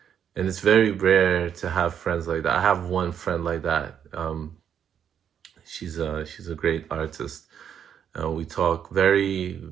And it's very rare to have friends like that. I have one friend like that. She's a great artist. We talk very,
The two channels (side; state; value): left; quieter; 8.6 dB